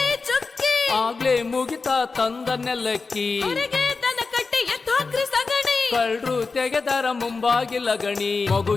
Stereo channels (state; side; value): quieter; right; 4.3 dB